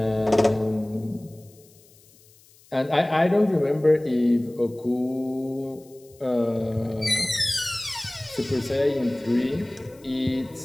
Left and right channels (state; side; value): noise; left; hiss, 28 dB below the sound